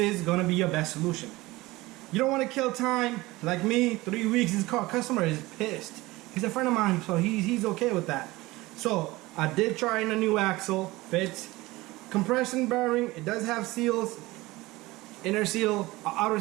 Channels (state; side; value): quieter; left; 20.1 dB